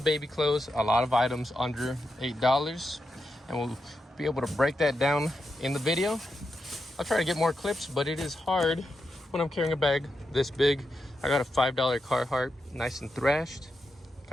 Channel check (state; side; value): normal; both; correlation 0.87